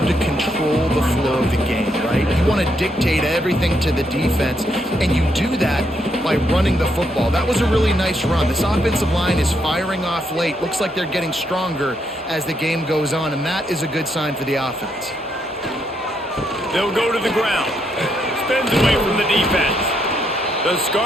to control the flow of the game, right? You want to dictate everything to the defense, and you do that by running the football. That was a really nice run. This offensive line is firing off late. Looks like they're getting stronger as the game goes on, and that is a good sign for the offense. They'll go to the ground. Spins away from the defense. The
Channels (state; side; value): normal; both; correlation 0.77